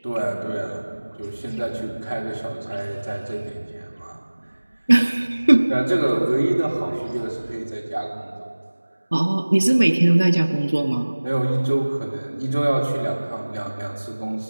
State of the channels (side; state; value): both; inverted; correlation -1.00